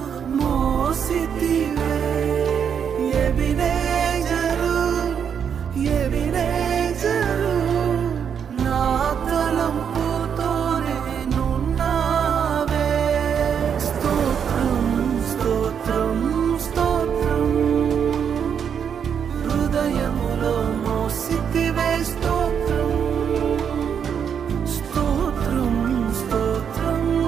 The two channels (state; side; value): quieter; left; 7.6 dB